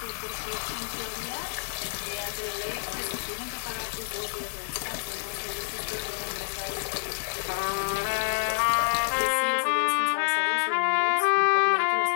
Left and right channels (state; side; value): silent; right; digital silence